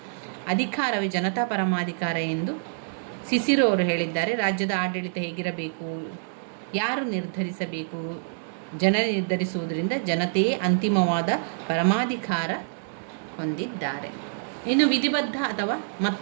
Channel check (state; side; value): silent; left; digital silence